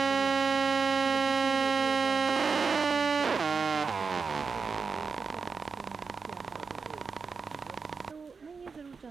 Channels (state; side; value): quieter; left; 5.1 dB